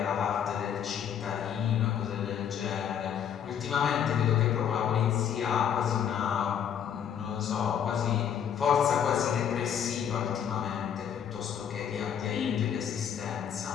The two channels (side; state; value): right; quieter; 8.7 dB